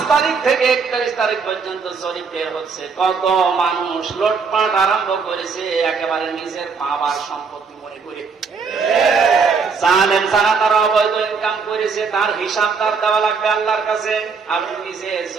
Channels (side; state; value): left; quieter; 5.3 dB